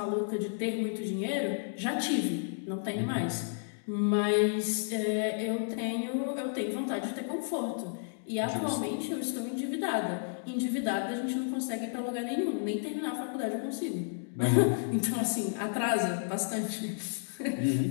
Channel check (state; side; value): silent; right; digital silence